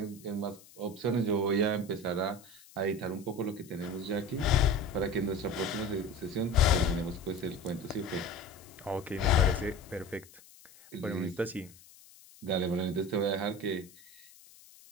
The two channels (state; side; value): noise; left; hiss, 23 dB below the sound